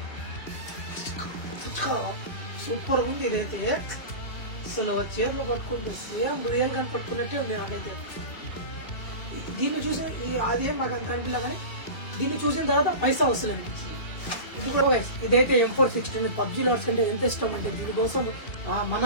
సూపర్ ఉంది. ఇదైతే అసలు చేతులు పట్టుకుంటే సేమ్ రియల్ గా పట్టుకున్నట్టే ఉంది నాకైతే. దీన్ని చూసి అదేం నాకు అంత అనిపించలే, కానీ దీన్ని చూసిన తర్వాత పైసా వస్తుంది అనిపించింది. ఇది కూడా ఇదైతే M416 పబ్జీ లవర్స్ కంటే ఎంత ఇష్టం అంటే దీనికోసం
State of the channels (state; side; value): late; right; 2.7 ms